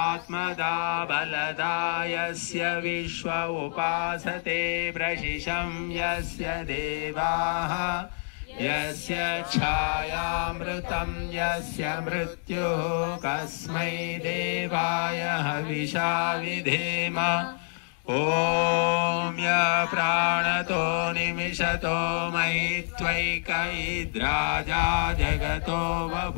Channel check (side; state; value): right; silent; digital silence